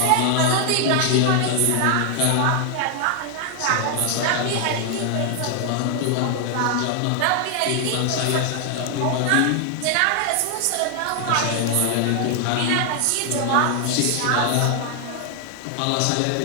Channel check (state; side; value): different; both; correlation 0.00